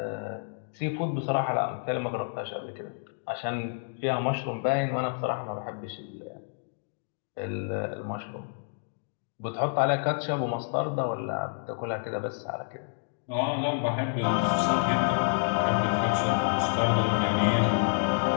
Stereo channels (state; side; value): silent; right; digital silence